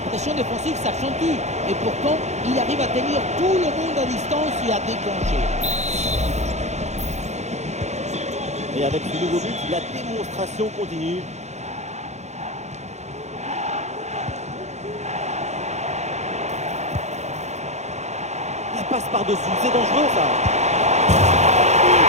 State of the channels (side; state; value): left; late; 0.33 ms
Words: défensive s'accentue. Et pourtant, il arrive à tenir tout le monde à distance et à déclencher. Et avec ce nouveau but, la démonstration continue. La passe par-dessus, c'est dangereux ça.